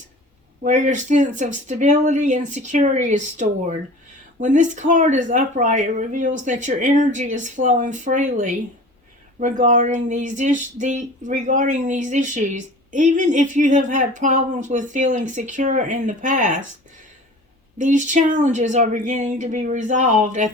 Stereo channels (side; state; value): both; normal; correlation 0.41